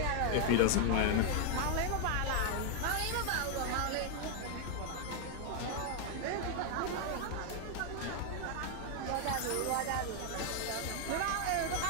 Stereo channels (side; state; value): both; different; correlation 0.00